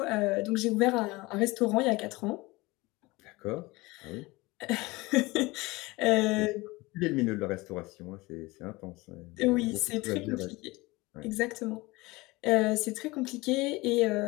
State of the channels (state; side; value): quieter; right; 22.3 dB